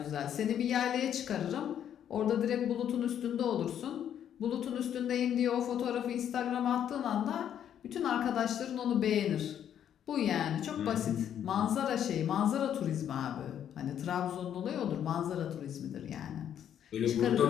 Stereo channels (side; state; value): right; quieter; 9.7 dB